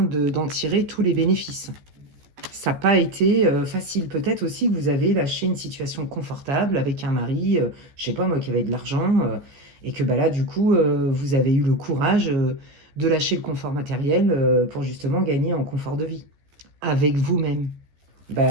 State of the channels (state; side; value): late; left; 14 ms